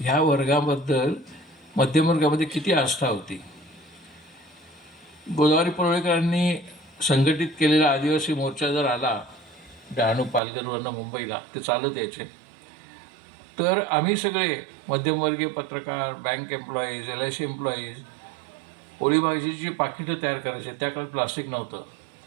वर्गाबद्दल मध्यमवर्गामध्ये किती आस्था होती. गोदावरी परुळेकरांनी संघटित केलेला आदिवासी मोर्चा जर आला डहाणू पालघरवरनं मुंबईला, ते चालत यायचे, तर आम्ही सगळे मध्यमवर्गीय पत्रकार, बँक एम्प्लॉईज, LIC एम्प्लॉईज पोळी भाजीची पाकिटं तयार करायचे. त्या काळात प्लास्टिक नव्हतं,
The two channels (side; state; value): left; drops out; at 10.4 s